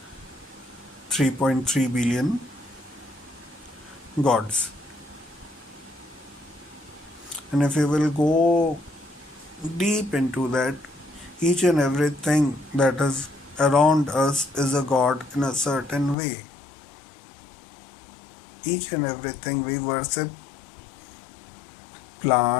3.3 billion gods. And if you will go deep into that, each and everything that is around us is a god in a certain way. Each and everything we worship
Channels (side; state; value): right; drops out; at 16.2 s